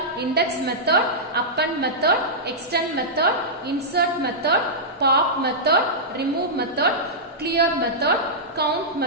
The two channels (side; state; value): both; normal; correlation -0.12